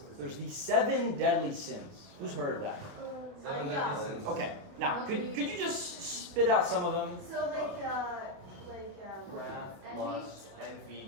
there's the 7 deadly sins. Who's heard of that? Okay. Now, could you just spit out some of them? So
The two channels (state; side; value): late; left; 29 ms